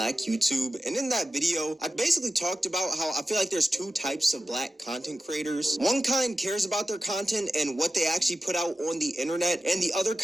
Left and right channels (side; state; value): both; normal; correlation 0.93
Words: YouTube, and in that video I basically talked about how I feel like there's two types of black content creators. One kind cares about their content and what they actually put out on the internet, and the other